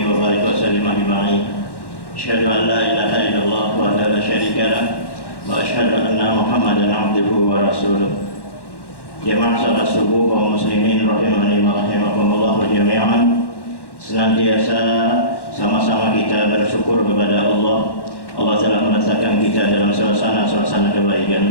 wa barik wa sallim ajma'in. Asyhadu an la ilaha illallah wa la syarika lah wa asyhadu anna Muhammadan abduhu wa rasuluh. Jamaah salat subuh kaum muslimin rahimani wa rahimakumullah jami'an. Senantiasa sama-sama kita bersyukur kepada Allah. Allah telah meletakkan kita dalam suasana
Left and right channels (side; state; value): right; late; 1.1 ms